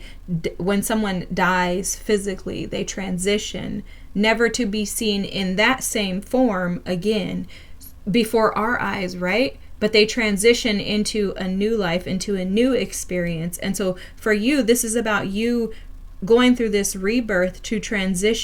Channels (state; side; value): identical; both; correlation 1.00